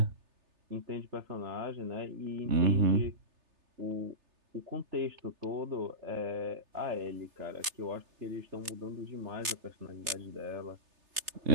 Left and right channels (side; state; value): left; late; 3.3 ms